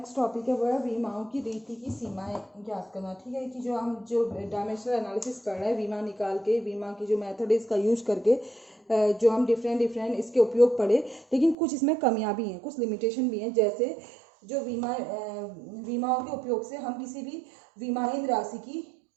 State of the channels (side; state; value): left; drops out; at 11.6 s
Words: टॉपिक है वो है विमाओं की रीति की सीमाएं ज्ञात करना। ठीक है, कि जो हम जो डायमेंशनल एनालिसिस कर रहे हैं विमा निकाल के, विमा की जो मेथड है इसका यूज करके जो हम डिफरेंट इसके उपयोग पढ़े, लेकिन कुछ इसमें कमियां भी हैं, कुछ लिमिटेशन भी हैं। जैसे जो विमाओं के उपयोग से हम किसी भी विमाहीन राशि